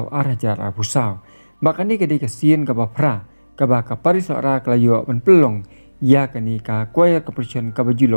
arajar abusau. Bakani kadi kasien ka bapra ka ba kapari sora kalayo ben pelong ya kani ka choir competition ka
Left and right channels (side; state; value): both; inverted; correlation -1.00